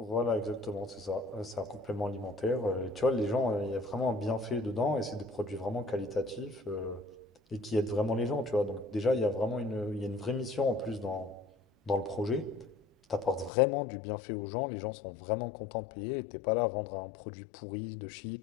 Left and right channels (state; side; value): drops out; right; at 13.5 s